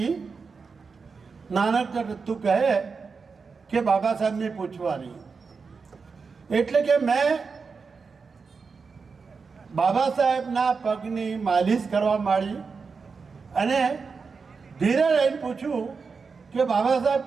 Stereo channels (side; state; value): left; quieter; 5.0 dB